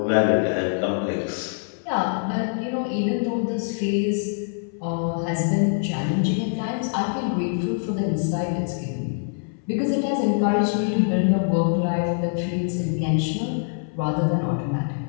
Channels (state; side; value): silent; right; 62 dB below the other